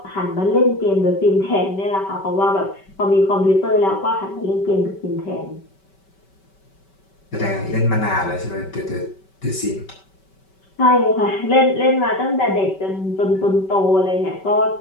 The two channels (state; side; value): late; right; 5.2 ms